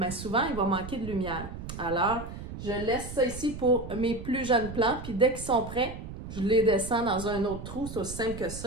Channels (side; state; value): right; noise; rumble, 10 dB below the sound